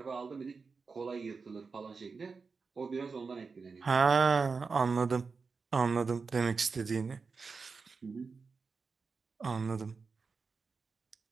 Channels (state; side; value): quieter; left; 4.8 dB